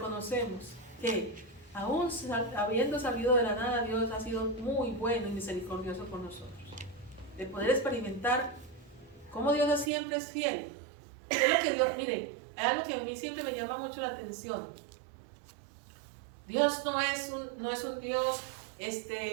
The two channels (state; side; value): drops out; left; at 9.9 s